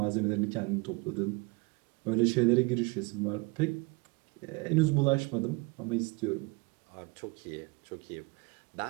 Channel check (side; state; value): left; quieter; 27.7 dB